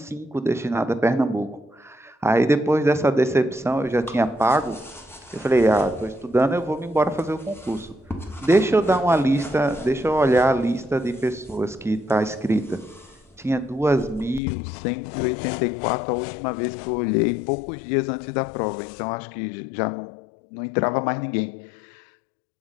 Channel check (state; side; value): drops out; right; at 14.4 s